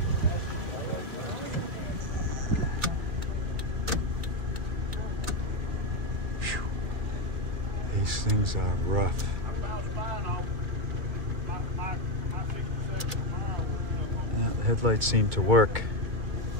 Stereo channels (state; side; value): late; left; 2.1 ms